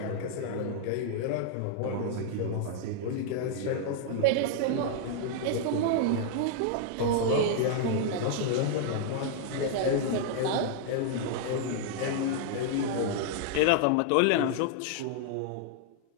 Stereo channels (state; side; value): different; both; correlation -0.01